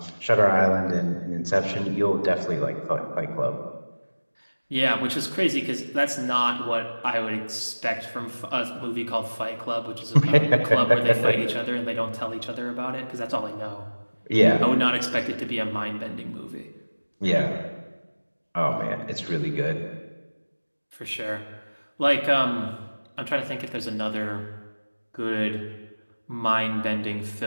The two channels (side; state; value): both; inverted; correlation -1.00